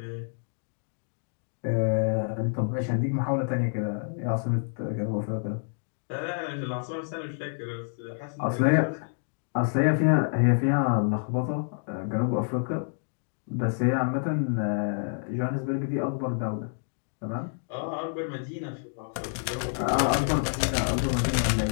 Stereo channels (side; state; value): right; silent; digital silence